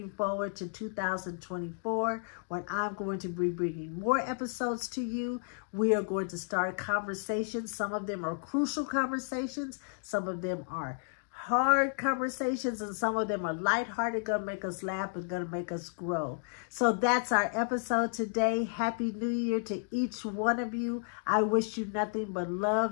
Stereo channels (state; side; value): silent; right; digital silence